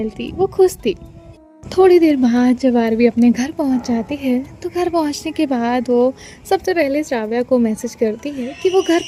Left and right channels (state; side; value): identical; both; correlation 1.00